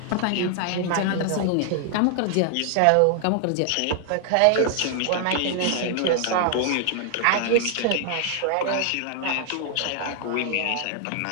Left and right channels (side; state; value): both; different; correlation 0.00